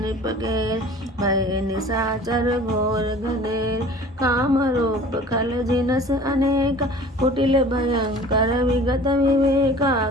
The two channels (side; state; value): both; normal; correlation 0.45